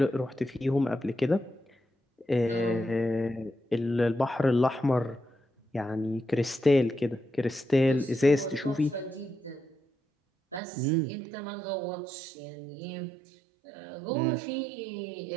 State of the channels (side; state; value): left; drops out; at 10.6 s